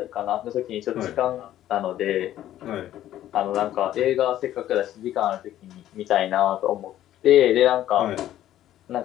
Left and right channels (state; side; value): quieter; right; 12.6 dB